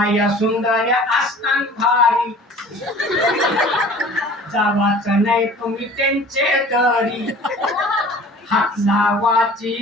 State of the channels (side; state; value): both; normal; correlation 0.46